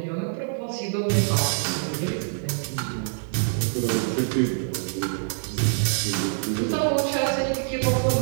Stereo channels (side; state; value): left; silent; digital silence